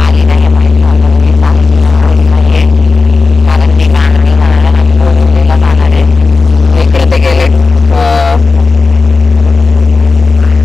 नाही माहिती कारण ती गाणी बोरिवलीला जाणार आहे. इकडे ते गेले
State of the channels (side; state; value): right; quieter; 4.1 dB